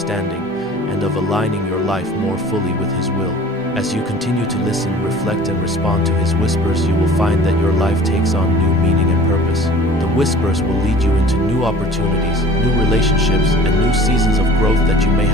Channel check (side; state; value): both; normal; correlation 0.45